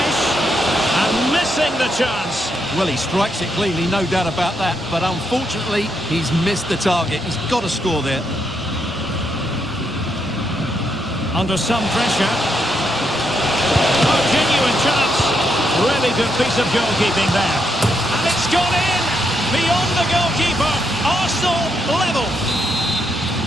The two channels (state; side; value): normal; both; correlation 0.79